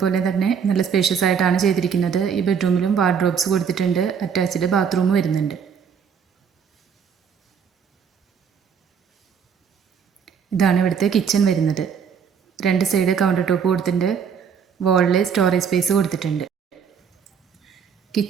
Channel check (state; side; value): quieter; left; 7.0 dB